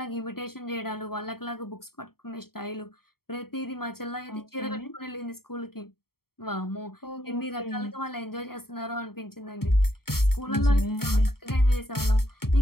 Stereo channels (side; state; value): right; late; 0.94 ms